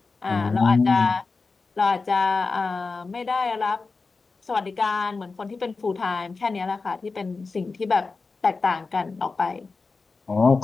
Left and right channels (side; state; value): right; quieter; 4.1 dB